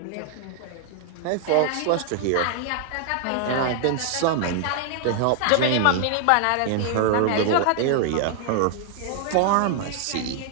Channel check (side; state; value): both; different; correlation 0.00